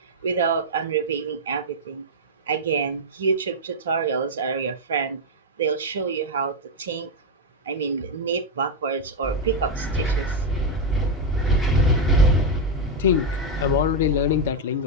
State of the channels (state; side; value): normal; both; correlation 0.03